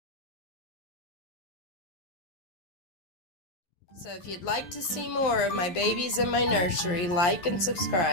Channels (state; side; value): late; right; 11 ms